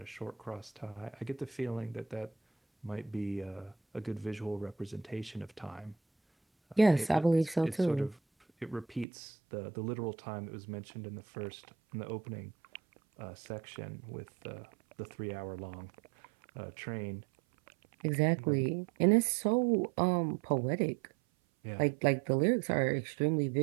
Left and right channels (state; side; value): drops out; left; at 9.1 s